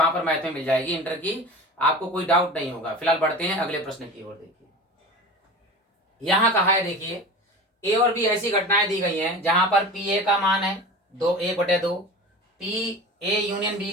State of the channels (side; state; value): both; normal; correlation 0.34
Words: पर मैथ में मिल जाएगी, इंटर की, आपको कोई डाउट नहीं होगा। फिलहाल बढ़ते हैं अगले प्रश्न की ओर। देखिए यहाँ कहा है, देखिए ए और बी ऐसी घटनाएं दी गई हैं जहां पर पी ए का मान है 1/2, पी ए यूनियन बी